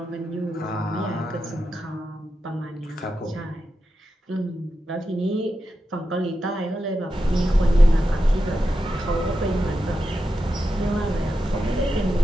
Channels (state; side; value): normal; both; correlation 0.89